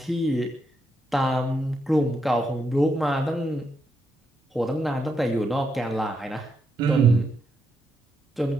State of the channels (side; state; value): both; normal; correlation 0.80